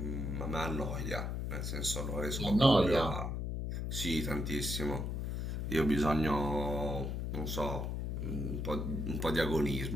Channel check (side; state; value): left; noise; hum, 2 dB below the sound